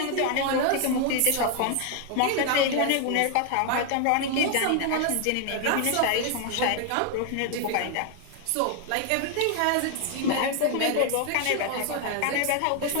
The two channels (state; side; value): different; both; correlation 0.00